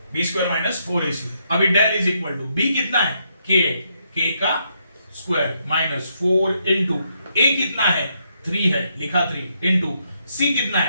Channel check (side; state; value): both; inverted; correlation -0.77